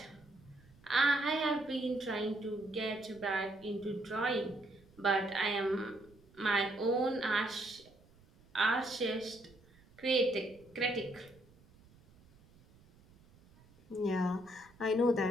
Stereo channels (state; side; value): noise; right; rumble, 27 dB below the sound